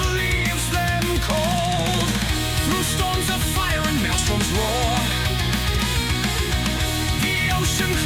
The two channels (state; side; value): identical; both; correlation 1.00